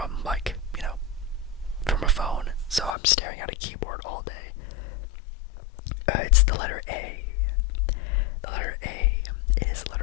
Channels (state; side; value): drops out; right; at 3.0 s